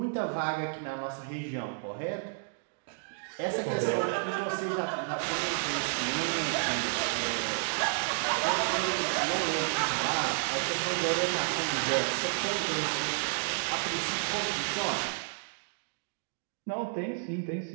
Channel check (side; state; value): left; silent; digital silence